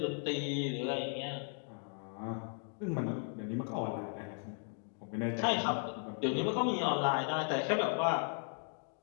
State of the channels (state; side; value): silent; right; 54 dB below the other